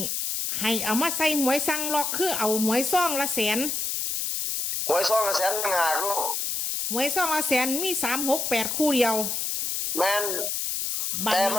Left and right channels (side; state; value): left; noise; hiss, 1 dB below the sound